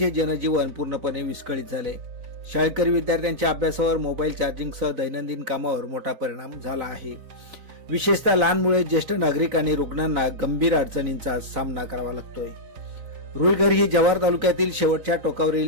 जनजीवन पूर्णपणे विस्कळीत झाले. शाळकरी विद्यार्थ्यांच्या अभ्यासावर, मोबाईल चार्जिंगसह दैनंदिन कामावर मोठा परिणाम झाला आहे. विशेषतः लहान मुले, ज्येष्ठ नागरिक आणि रुग्णांना गंभीर अडचणींचा सामना करावा लागतोय. रुईघर ही जव्हार तालुक्यातील शेवटच्या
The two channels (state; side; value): late; left; 4.0 ms